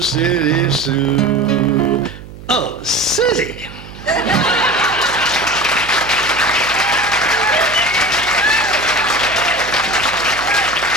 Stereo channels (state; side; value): noise; right; hum, 16 dB below the sound